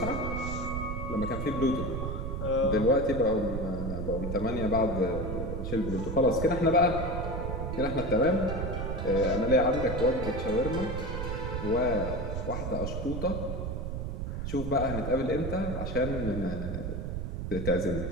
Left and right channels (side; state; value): right; noise; rumble, 3 dB below the sound